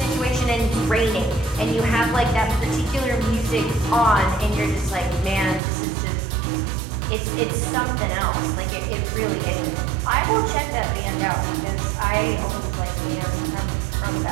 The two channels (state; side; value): drops out; left; at 5.6 s